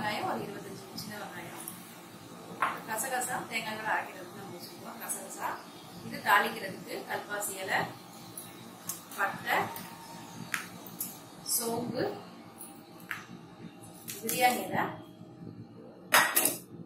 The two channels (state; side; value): identical; both; correlation 1.00